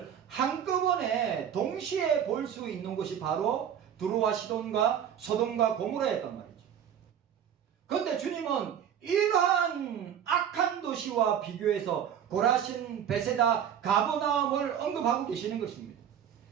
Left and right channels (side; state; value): left; quieter; 9.2 dB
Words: 한꺼번에 동시에 볼 수 있는 것이 바로 두로와 시돈과 소돔과 고모라였단 말이죠. 그런데 주님은 이러한 악한 도시와 비교해서 고라신, 베세다, 가버나움을 언급하고 계시는 것입니다.